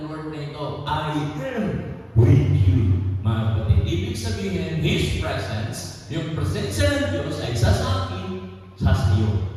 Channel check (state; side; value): identical; both; correlation 1.00